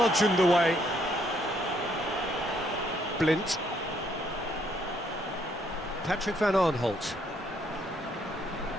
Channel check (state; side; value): normal; both; correlation 0.69